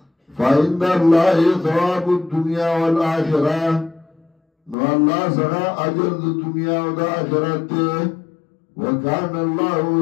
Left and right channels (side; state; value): right; drops out; at 4.8 s